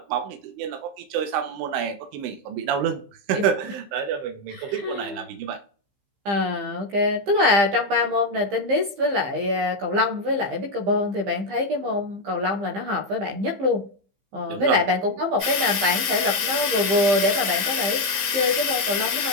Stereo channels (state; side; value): late; left; 15 ms